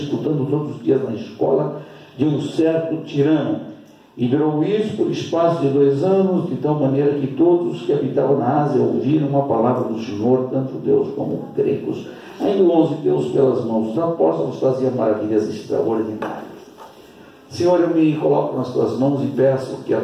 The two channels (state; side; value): identical; both; correlation 1.00